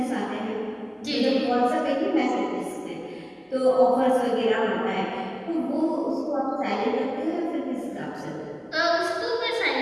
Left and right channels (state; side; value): identical; both; correlation 1.00